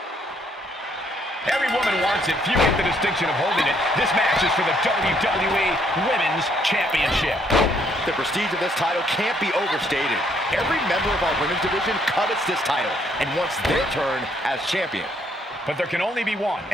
Every woman wants it. Few get the distinction of holding it. This match is for the WWE Women's Championship. The prestige of this title can't be overstated. Every member of our women's division covets this title and wants their turn as champion. But there can only be one,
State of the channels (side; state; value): both; normal; correlation 0.69